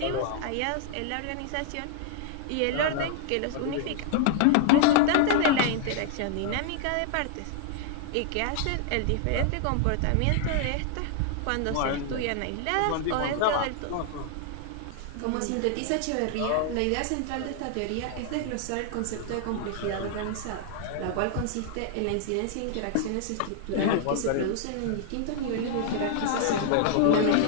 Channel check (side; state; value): both; different; correlation -0.01